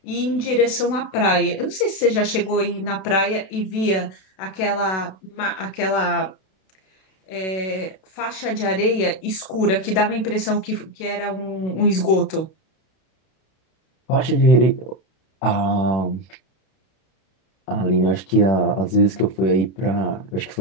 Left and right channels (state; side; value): late; right; 32 ms